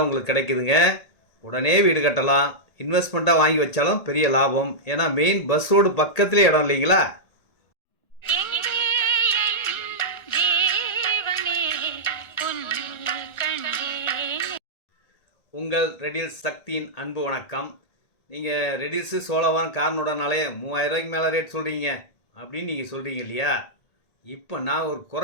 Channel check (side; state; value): right; late; 1.8 ms